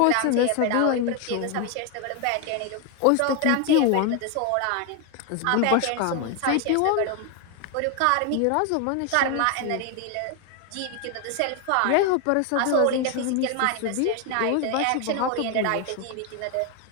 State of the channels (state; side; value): different; both; correlation 0.01